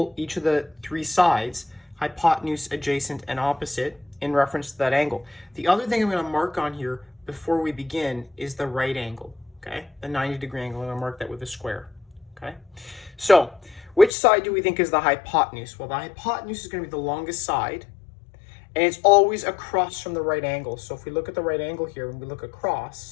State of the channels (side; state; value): right; drops out; at 14.1 s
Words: each of the three sides, hypotenuse, adjacent, and opposite, in reference to that angle. The other thing I'm going to mark on here before we begin is the right angle. Okay, the 90-degree angle, and I'll mark that with a square. Okay, so which side do we think is the hypotenuse? Well, the hypotenuse is going to be the longest side, and it's always across from the right angle. So if we look at the right angle here and we look